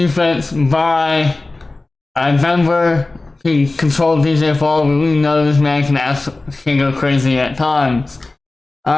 by Denver. He controlled DJ Fall, but we know this man can go crazy at times.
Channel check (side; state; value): right; quieter; 3.2 dB